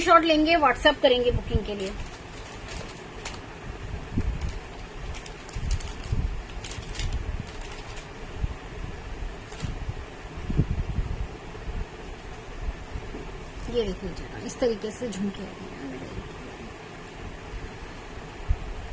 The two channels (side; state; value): both; identical; correlation 1.00